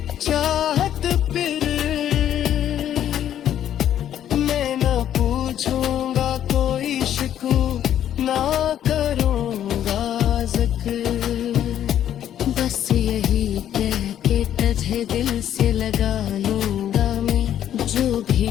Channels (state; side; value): quieter; right; 10.7 dB